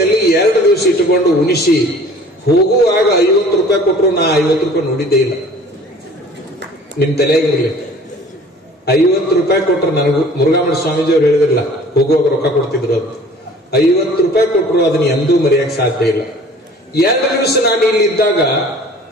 2 ದಿವಸ ಇಟ್ಟುಕೊಂಡು ಉಣಿಸಿ ಹೋಗುವಾಗ 50 ರೂಪಾಯಿ ಕೊಟ್ಟರು. ನಾ 50 ರೂಪಾಯಿ ನೋಡಿದ್ದೇ ಇಲ್ಲ. ನಿಮ್ ತಲೆಯಾಗಿರ್ಲಿ, 50 ರೂಪಾಯಿ ಕೊಟ್ಟರು. ನನಗೂ ಮುರುಘಾಮಠ ಸ್ವಾಮೀಜಿ ಅವ್ರು ಹೇಳಿದ್ರಲ್ಲ ಹೋಗುವಾಗ ರೊಕ್ಕ ಕೊಡ್ತಿದ್ರು ಅಂತ. 50 ರೂಪಾಯಿ ಕೊಟ್ಟರು, ಅದನ್ನ ಎಂದೂ ಮರೆಯಕ್ಕೆ ಸಾಧ್ಯ ಇಲ್ಲ. 2 ದಿವಸ ನಾನು ಇಲ್ಲಿ ಇದ್ದಾಗ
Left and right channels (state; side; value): normal; both; correlation 0.48